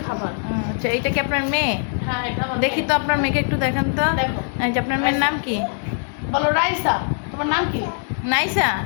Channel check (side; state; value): right; silent; 57 dB below the other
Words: খাবার। আচ্ছা, এইটা কি আপনার মেয়ে? হ্যাঁ, এটা আমার দেখি মেয়ে। তো আপনার মেয়েকে একটু দেখান তো। দেখো। এই যে আপনার মেয়ের নাম কি? বলো রাইসা। তোমার নাম কি? নাইসা।